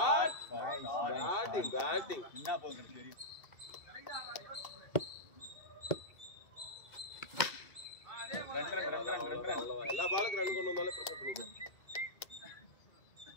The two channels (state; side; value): late; right; 2.7 ms